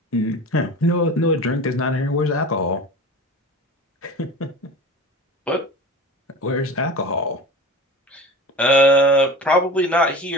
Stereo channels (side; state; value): both; normal; correlation 0.35